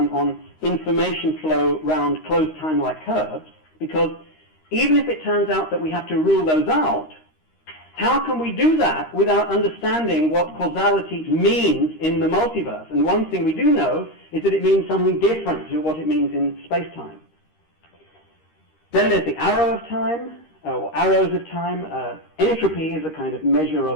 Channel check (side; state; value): right; late; 13 ms